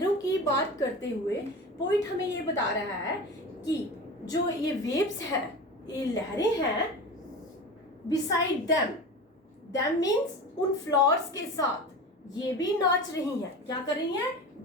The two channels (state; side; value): normal; both; correlation 0.31